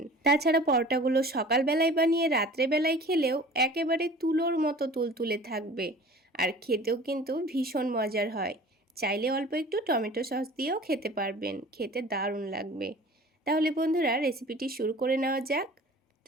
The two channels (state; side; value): normal; both; correlation 0.44